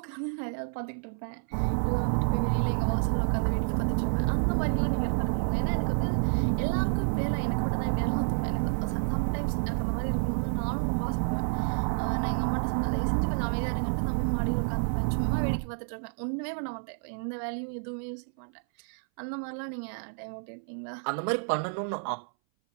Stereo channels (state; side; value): silent; left; 58 dB below the other